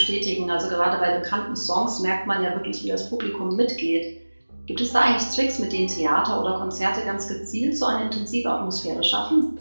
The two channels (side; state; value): both; inverted; correlation -1.00